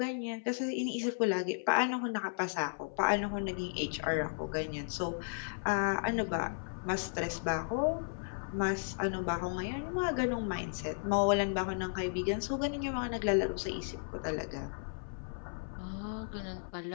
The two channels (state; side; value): silent; right; 55 dB below the other